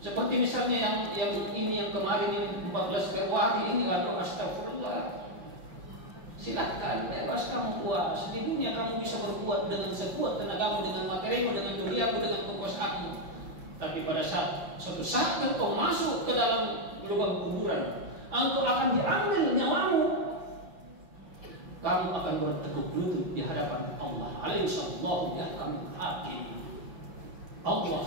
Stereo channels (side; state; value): left; late; 5.6 ms